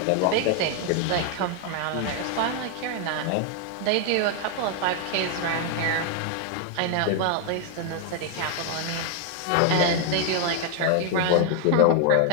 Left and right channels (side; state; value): both; different; correlation 0.00